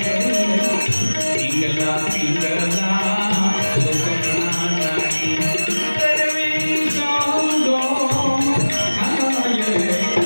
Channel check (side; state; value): both; inverted; correlation -1.00